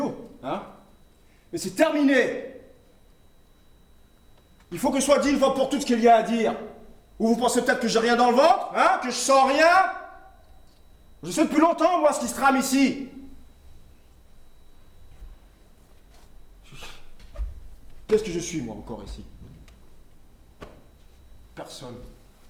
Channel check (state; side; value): identical; both; correlation 1.00